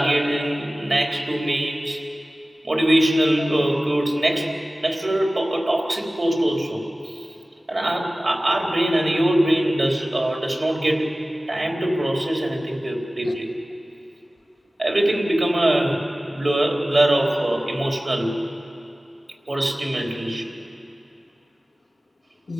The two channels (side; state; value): both; normal; correlation 0.97